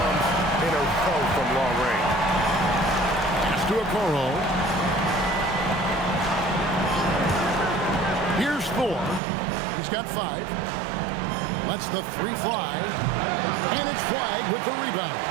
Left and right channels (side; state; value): left; drops out; at 9.2 s